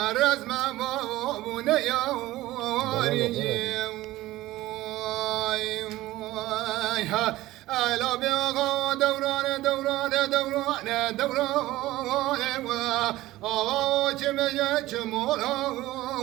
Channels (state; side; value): quieter; left; 16.9 dB